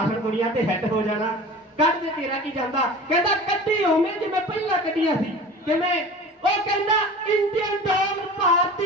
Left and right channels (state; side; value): normal; both; correlation 0.38